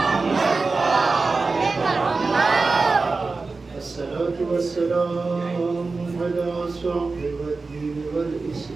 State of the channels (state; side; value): quieter; left; 3.9 dB